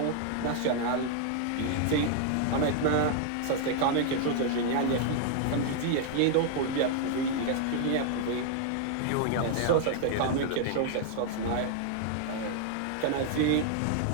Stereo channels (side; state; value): both; different; correlation 0.00